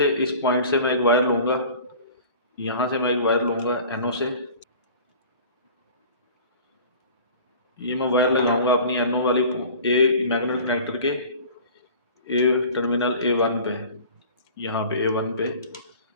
इस पॉइंट से मैं एक वायर लूँगा, यहाँ से मैं एक वायर लूँगा एनओ से, ये मैं वायर लगाऊंगा अपनी एनओ वाली ए मैग्नेट कनेक्टर के ए टर्मिनल A1 पे, यहाँ पे A1 पे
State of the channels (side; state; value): both; inverted; correlation -0.43